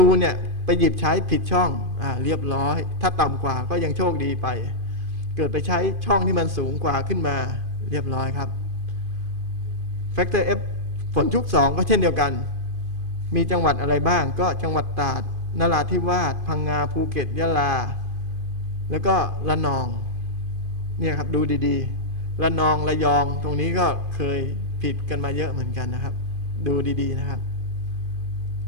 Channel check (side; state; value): left; late; 2.5 ms